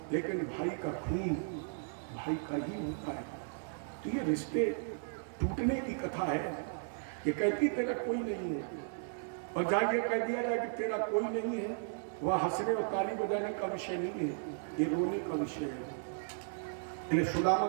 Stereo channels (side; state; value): left; silent; 54 dB below the other